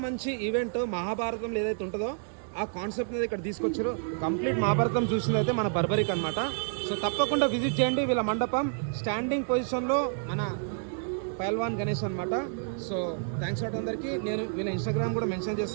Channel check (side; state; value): left; silent; digital silence